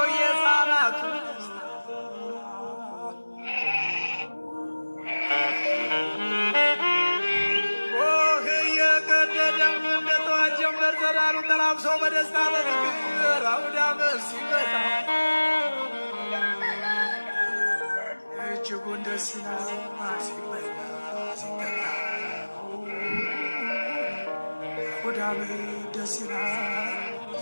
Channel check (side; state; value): both; inverted; correlation -1.00